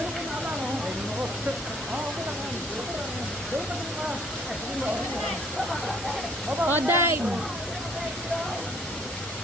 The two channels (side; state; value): both; normal; correlation 0.60